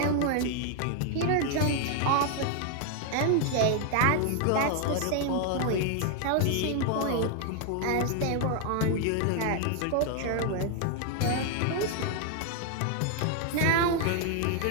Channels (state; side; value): different; both; correlation 0.00